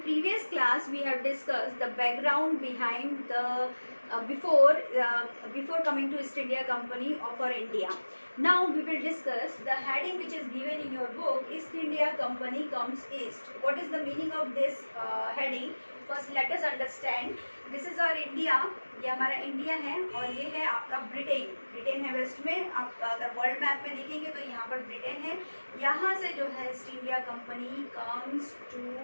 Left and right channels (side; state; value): both; inverted; correlation -1.00